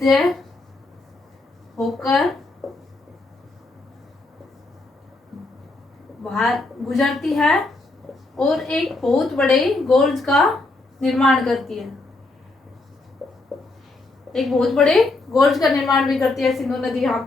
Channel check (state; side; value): quieter; right; 3.1 dB